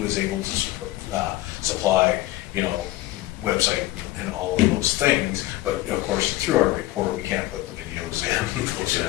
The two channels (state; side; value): quieter; right; 16.7 dB